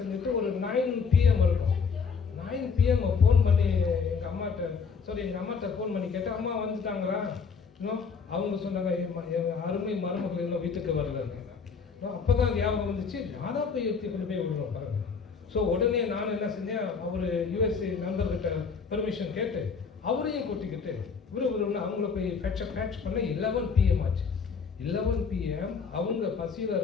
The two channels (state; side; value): quieter; right; 5.6 dB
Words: ஒரு 9 PM இருக்கும். 9 PM ஃபோன் பண்ணி எங்கள் அம்மாட்ட ஃபோன் பண்ணி கேட்டேன், அம்மா வந்துட்டாங்களா? இன்னும் அவங்க சொன்னாங்க, அருமை மருமகள் இன்னும் வீட்டுக்கு வரலன்னு. அப்போ தான் ஞாபகம் வந்துச்சு, நான் தான் போய் எடுத்து கொண்டு போய் விடுறோம் பாருங்க. ஸோ உடனே நான் என்ன செஞ்சேன், அவர் USA நண்பர்கிட்ட பெர்மிஷன் கேட்டு அவரையும் கூட்டிக்கிட்டு விறுவிறுன்னு அவங்கள போய் பேட்ச் பண்ண 11 PM ஆச்சு. 11 PM அவங்க பசியில்